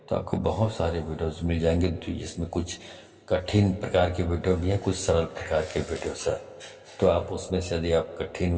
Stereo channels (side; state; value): both; identical; correlation 1.00